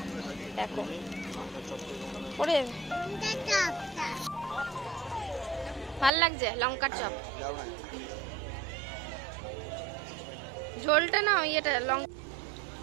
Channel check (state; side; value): drops out; left; at 6.1 s